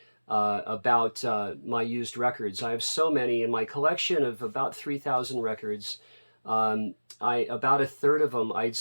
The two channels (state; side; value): inverted; both; correlation -1.00